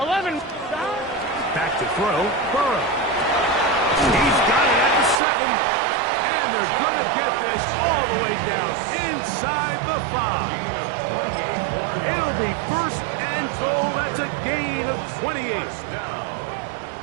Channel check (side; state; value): left; drops out; at 5.2 s